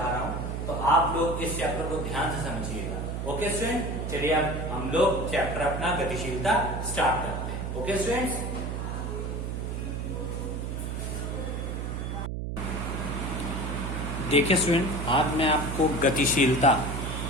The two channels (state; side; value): noise; right; hum, 4 dB below the sound